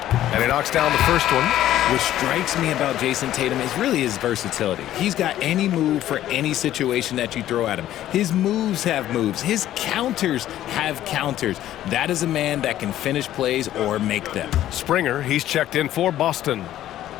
And he knocks down the first one. What strikes me about Jason Tatum is really his versatility. He's got any move for any situation that you throw at him. His moves have moves. His counters have counters. That is a man that can finish plays or make them. Springer, he's checked in for Boston.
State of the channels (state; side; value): quieter; right; 12.9 dB